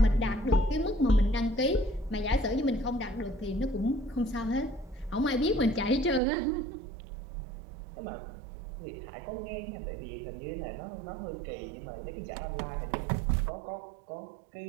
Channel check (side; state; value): left; drops out; at 6.2 s